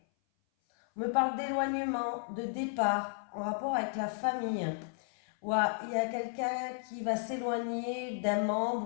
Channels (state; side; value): silent; right; 55 dB below the other